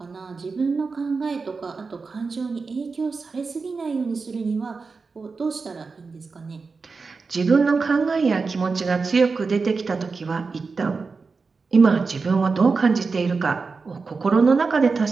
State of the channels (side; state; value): left; quieter; 4.5 dB